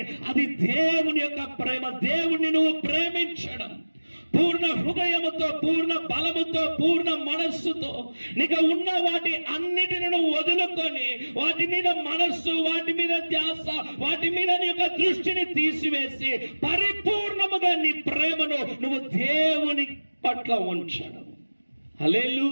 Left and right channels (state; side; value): inverted; both; correlation -1.00